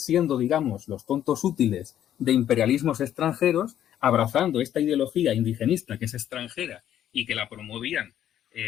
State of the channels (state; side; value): quieter; right; 11.0 dB